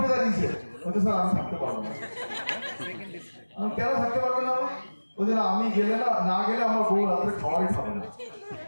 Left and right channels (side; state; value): both; inverted; correlation -1.00